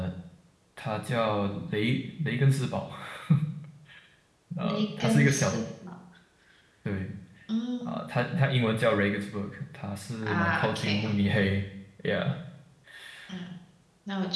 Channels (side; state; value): both; identical; correlation 1.00